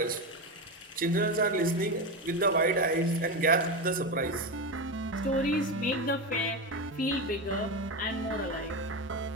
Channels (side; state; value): both; normal; correlation 0.16